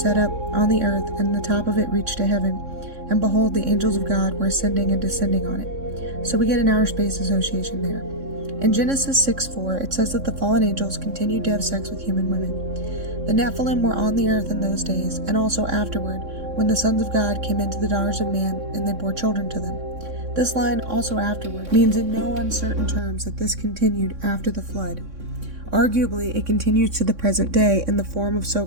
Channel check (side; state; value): left; late; 3.6 ms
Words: up on the earth, and the top of it reached to heaven, and behold, the angels of God were ascending and descending on it. So we get an outer space association there. In Genesis 6:4, it says that the fallen angels continued to have sex with human women. The Nephilim were on the earth in those days, and also afterward, when the sons of God came into the daughters of man, and they bore children to them. This line, also afterward, means in no uncertain terms that this continued after the flood. Arguably, it continues to the present day in the form of